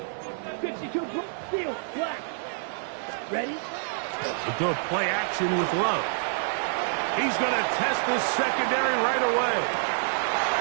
Ready? A good play action with Love. He's going to test this secondary right away.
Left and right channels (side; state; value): left; silent; digital silence